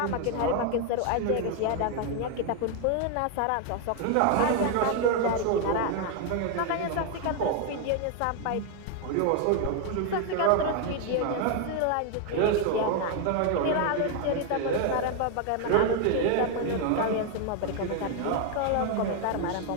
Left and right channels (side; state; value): both; different; correlation 0.01